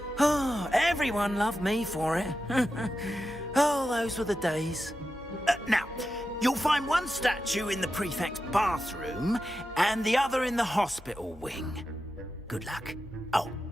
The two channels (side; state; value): both; normal; correlation 0.90